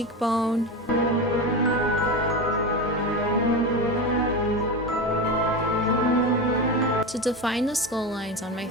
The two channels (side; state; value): both; normal; correlation 0.21